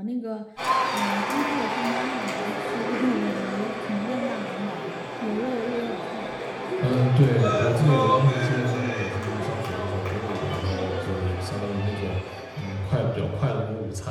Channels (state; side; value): identical; both; correlation 1.00